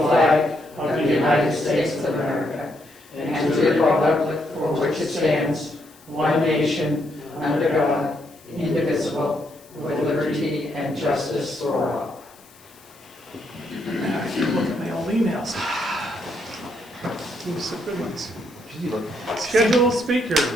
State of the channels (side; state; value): left; noise; hiss, 26 dB below the sound